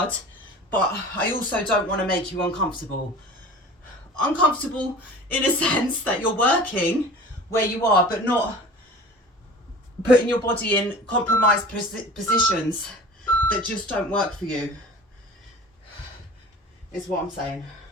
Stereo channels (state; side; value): normal; both; correlation 0.40